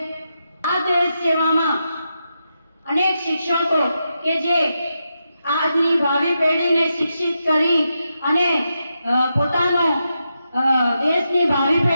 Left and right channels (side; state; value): both; inverted; correlation -0.86